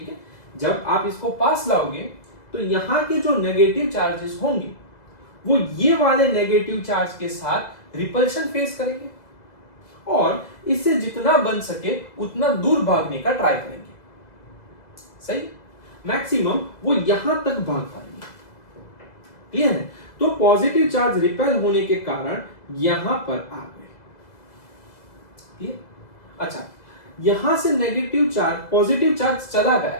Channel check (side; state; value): right; late; 2.0 ms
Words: है। जब आप इसको पास लाओगे तो यहां के जो नेगेटिव चार्जेस होंगे वो ये वाले नेगेटिव चार्ज के साथ रिपल्शन फेस करेंगे और इससे जितना बन सके उतना दूर भागने का ट्राई करेंगे, सही। मैक्सिमम वो यहां तक भाग पाएंगे, क्लियर है। तो पॉजिटिव चार्ज रिपेल होने के कारण यहां पर आ गए, क्लियर। अच्छा, यहां से नेगेटिव चार्ज, पॉजिटिव चार्ज चला